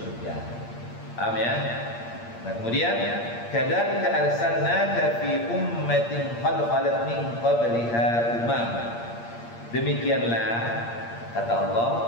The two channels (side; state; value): right; late; 8.6 ms